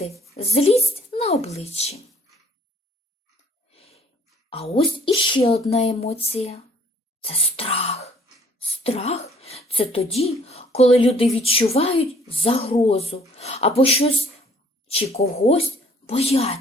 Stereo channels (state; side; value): normal; both; correlation 0.58